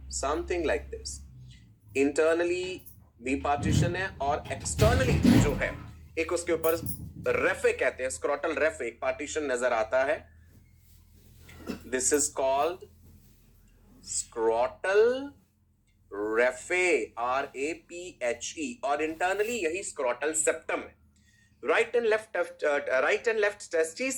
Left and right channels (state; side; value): identical; both; correlation 1.00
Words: something like this. Internally भी पार्टीशन है और एक्सटर्नली जो है एक उसके ऊपर रेफे कहते हैं, स्क्रोटल रेफे, एक पार्टीशन नजर आता है। This is called scrotal raphe, RAPHE, और इंटरनली यही स्क्रोटल सेप्टम है। राइट एंड लेफ्ट टेस्टिस